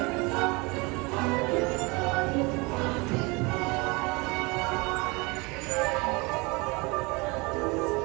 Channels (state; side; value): quieter; left; 26.9 dB